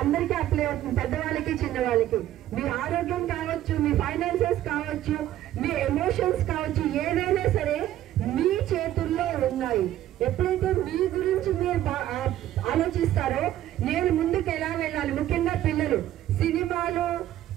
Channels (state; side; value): quieter; left; 13.0 dB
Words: అందరికీ అప్లై అవుతుంది, పెద్దవాళ్ళకి చిన్నవాళ్ళకి. మీ ఆరోగ్యం కావచ్చు, మీ ఫైనాన్సెస్ కావచ్చు, మీ ఎమోషన్స్ కావచ్చు, ఏదైనా సరే మీ చేతుల్లో ఉన్నాయి. ఎప్పుడైతే మీ గురించి మీరు ఆలోచిస్తారో నేను ముందుకు ఎలా వెళ్ళాలి, ముఖ్యంగా పిల్లలు సినిమాలు,